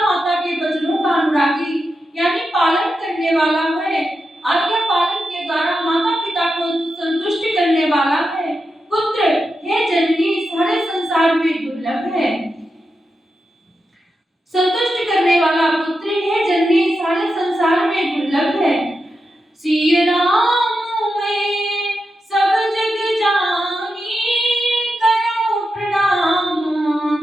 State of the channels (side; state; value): both; normal; correlation 0.88